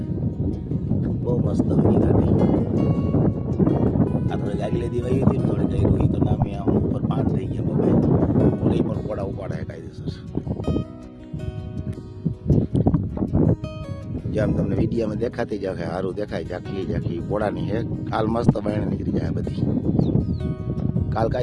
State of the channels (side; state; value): both; identical; correlation 1.00